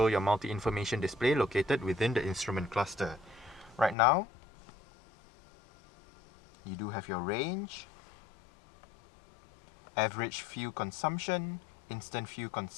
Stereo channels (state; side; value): drops out; right; at 4.0 s